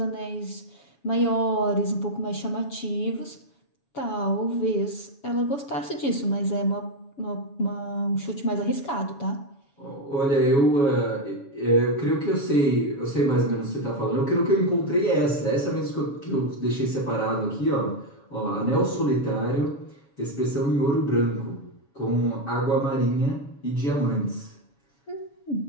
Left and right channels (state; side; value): late; right; 7.2 ms